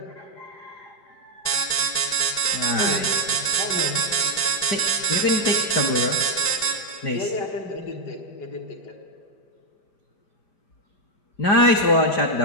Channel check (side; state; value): right; late; 4.6 ms